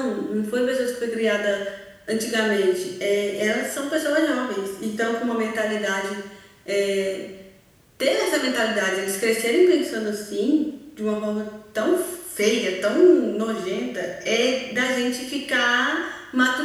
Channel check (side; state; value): both; identical; correlation 1.00